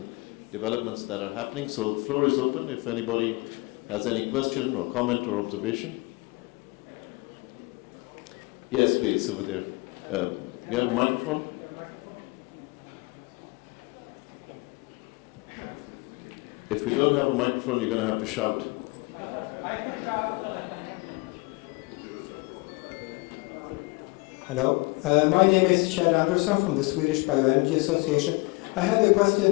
developments that are happening. So the floor is open if anybody has any question or comment or observation. Yes, please, over there. You have a microphone? If we don't have a microphone, you're going to have to shout. Hello, my name is Kjell Andersson from the Swedish Bioenergy Association. I had a question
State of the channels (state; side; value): quieter; right; 26.0 dB